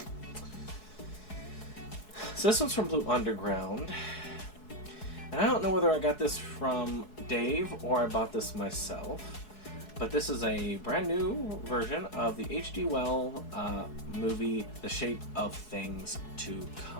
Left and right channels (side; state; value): right; late; 4.7 ms